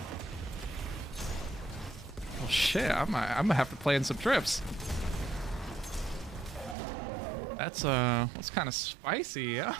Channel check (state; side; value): drops out; left; at 6.8 s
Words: Well, shit. I'm gonna have to plan some trips. That's kind of spicy. Yeah.